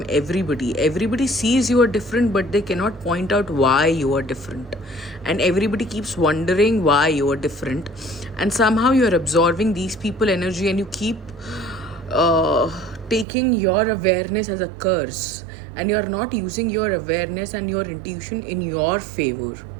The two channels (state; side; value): drops out; left; at 13.2 s